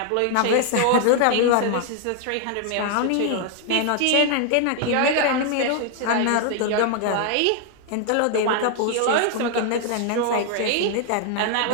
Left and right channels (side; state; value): both; different; correlation 0.00